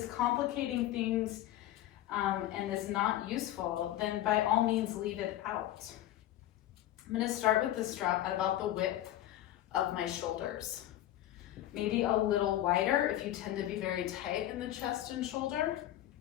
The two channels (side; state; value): right; quieter; 13.5 dB